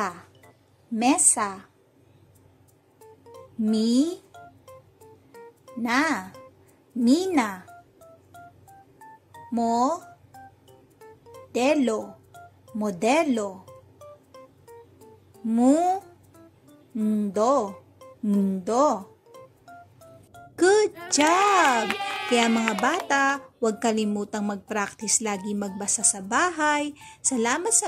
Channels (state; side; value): identical; both; correlation 1.00